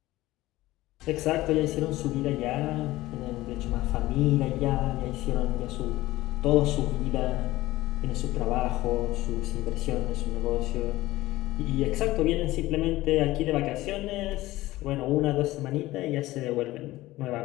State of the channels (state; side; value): quieter; right; 17.4 dB